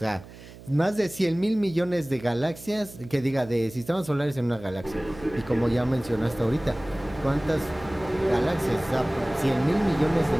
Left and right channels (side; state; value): right; noise; hum, 18 dB below the sound